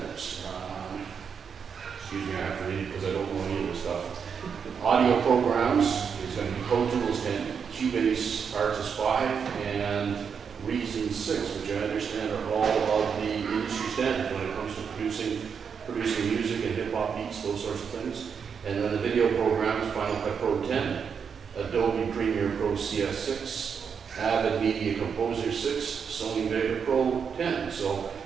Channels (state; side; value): quieter; left; 6.6 dB